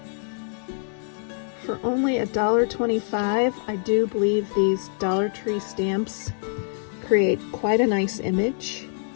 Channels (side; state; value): right; silent; digital silence